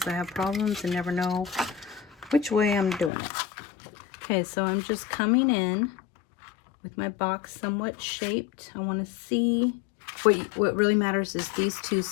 I have problems and never know which way I'm doing it. Okay, so I'm just coming in with my box somewhat shaped. I want to see what really matters is these two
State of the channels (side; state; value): right; drops out; at 3.1 s